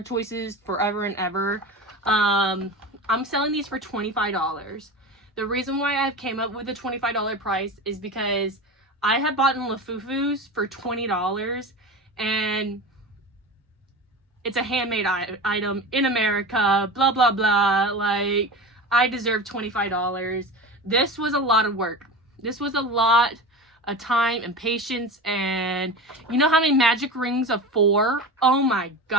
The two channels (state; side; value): normal; both; correlation 0.28